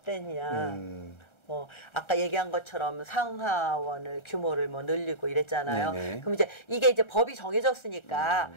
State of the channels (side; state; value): right; late; 1.3 ms